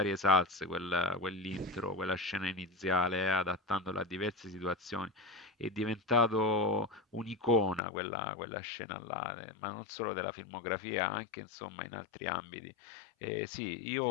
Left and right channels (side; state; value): right; drops out; at 7.8 s